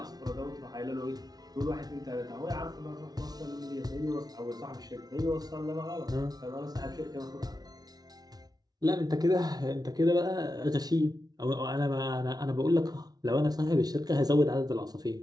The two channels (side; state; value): left; late; 0.19 ms